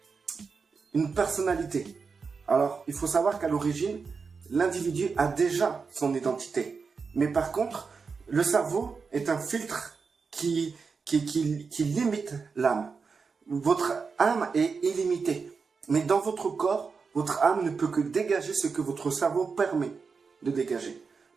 une personnalité. Alors, il faut savoir qu'à l'origine, l'individu a déjà son identité. Mais par contre, le cerveau est un filtre qui limite l'âme. Votre âme est illimitée. Mais dans votre corps, votre âme ne peut que dégager ce que votre cerveau permet de dégager.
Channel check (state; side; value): quieter; left; 5.1 dB